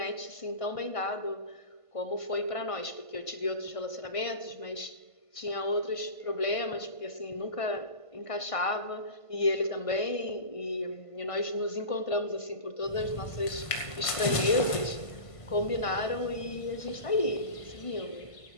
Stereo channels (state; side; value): late; right; 1.5 ms